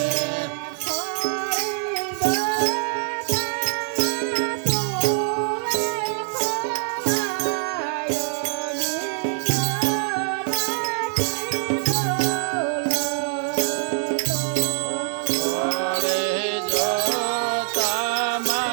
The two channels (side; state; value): left; silent; digital silence